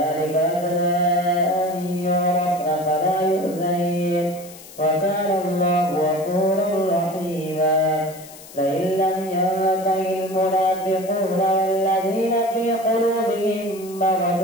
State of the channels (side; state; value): left; noise; hiss, 18 dB below the sound